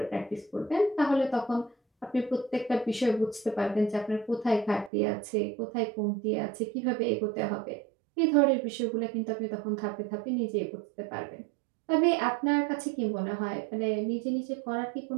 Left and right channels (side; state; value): left; drops out; at 4.9 s